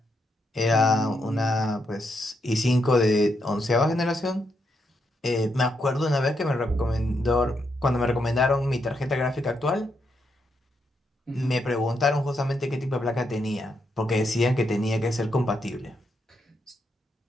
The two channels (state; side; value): normal; both; correlation 0.80